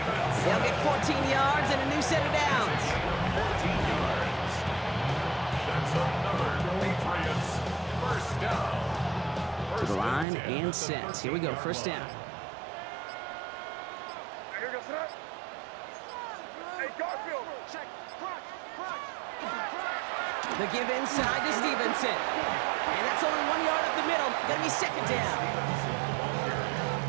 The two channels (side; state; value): left; drops out; at 10.2 s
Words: They'll get 14 yards and a new set of downs. 14 yards. That's another Patriots first down. To the line and set. Here we go, first down. The give inside to Stevenson. And that's only 1 yard up the middle. Gonna be second down.